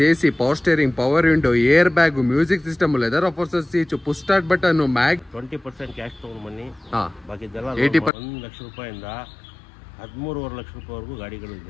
AC, power steering, power window, air bag, music system, leather ಆಫರ್ಸರ್ seat, push start button, mag 20% cash ತಗೊಂಡು ಬನ್ನಿ. ಬಾಕಿದೆಲ್ಲ 80% 1 ಲಕ್ಷ ರೂಪಾಯಿಂದ 13.5 ಲಕ್ಷ ರೂಪಾಯಿವರೆಗೂ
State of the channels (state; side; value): drops out; right; at 8.1 s